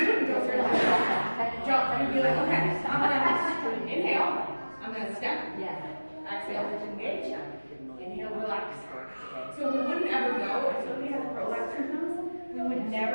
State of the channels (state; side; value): inverted; both; correlation -1.00